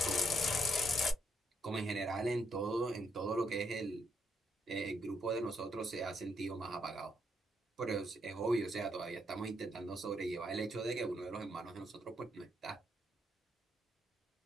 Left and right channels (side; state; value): both; normal; correlation 0.74